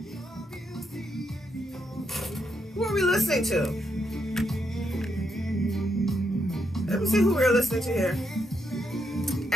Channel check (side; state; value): both; normal; correlation 0.80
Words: Who are we listening to? Let me see who we're listening to here.